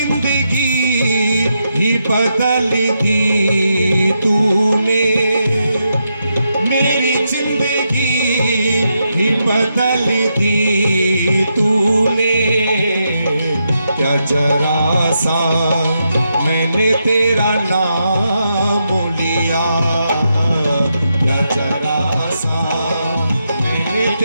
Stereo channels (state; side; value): inverted; both; correlation -0.83